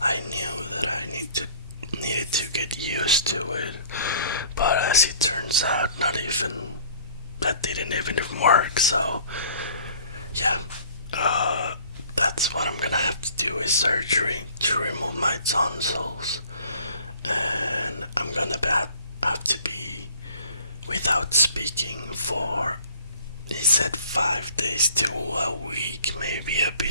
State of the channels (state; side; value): inverted; both; correlation -0.51